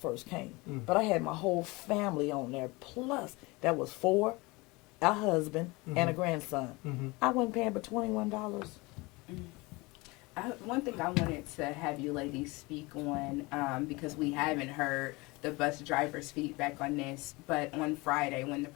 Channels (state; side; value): quieter; right; 24.1 dB